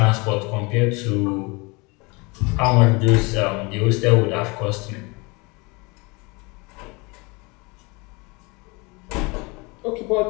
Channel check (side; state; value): right; quieter; 27.4 dB